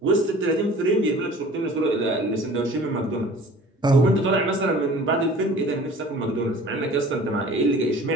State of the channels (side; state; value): both; normal; correlation 0.46